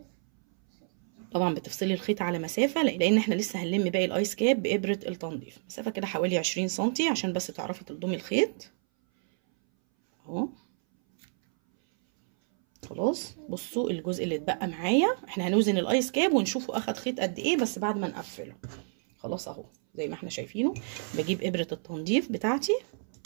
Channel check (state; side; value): silent; left; 58 dB below the other